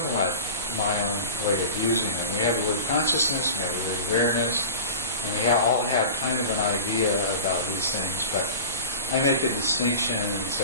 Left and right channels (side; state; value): both; inverted; correlation -0.33